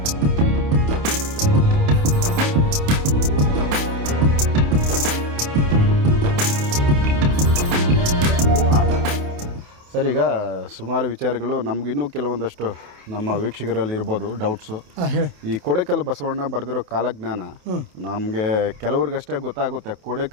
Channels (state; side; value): late; left; 28 ms